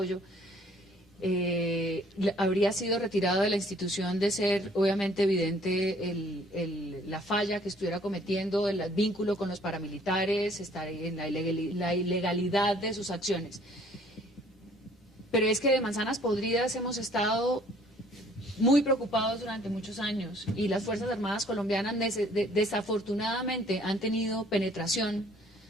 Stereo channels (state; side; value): normal; both; correlation 0.58